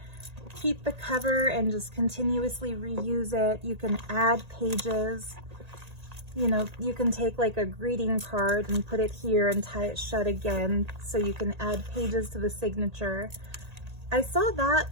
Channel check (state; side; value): late; left; 1.8 ms